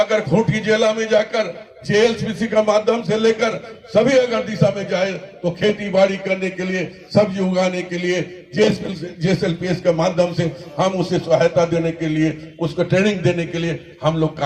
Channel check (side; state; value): both; identical; correlation 1.00